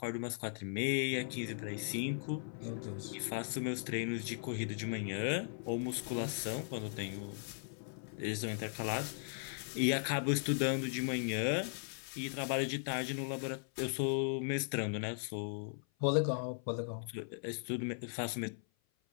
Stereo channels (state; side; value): silent; right; 52 dB below the other